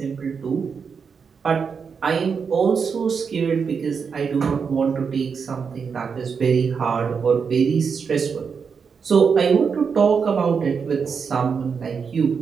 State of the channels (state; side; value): quieter; left; 6.0 dB